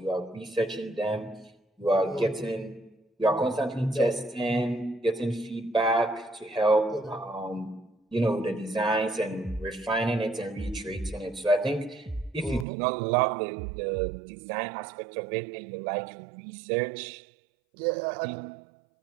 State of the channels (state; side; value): drops out; left; at 12.7 s